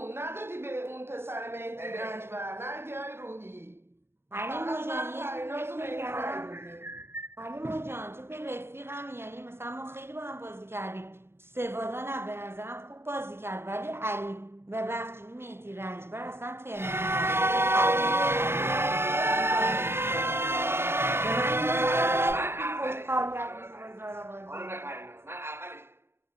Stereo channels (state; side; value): late; left; 0.11 ms